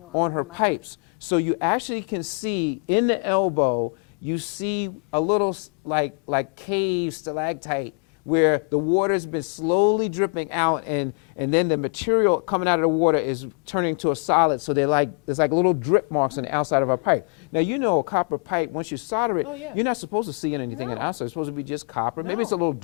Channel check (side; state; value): right; quieter; 39.9 dB